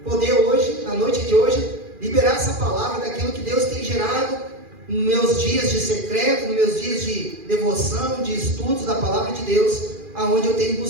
poder hoje, na noite de hoje, liberar essa palavra daquilo que Deus tem gerado nos meus dias de secreto, nos meus dias de devoção, de estudos da palavra de Deus, aonde eu tenho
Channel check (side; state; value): left; late; 2.4 ms